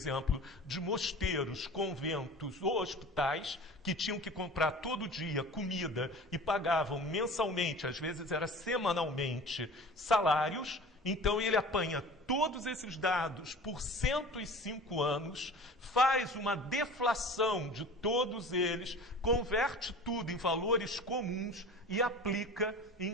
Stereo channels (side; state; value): both; normal; correlation 0.39